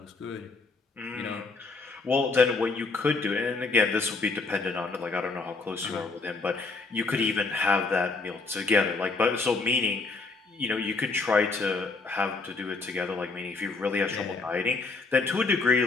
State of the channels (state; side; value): quieter; right; 3.9 dB